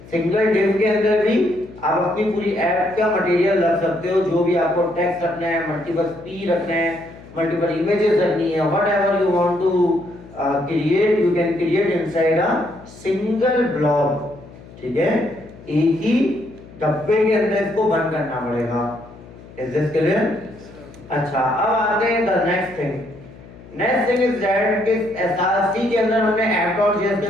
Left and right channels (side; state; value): left; noise; hum, 19 dB below the sound